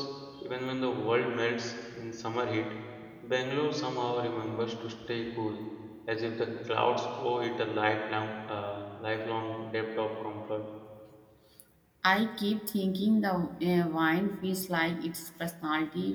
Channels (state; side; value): identical; both; correlation 1.00